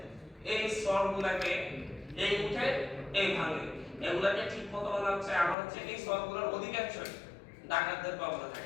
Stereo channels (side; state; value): right; drops out; at 5.6 s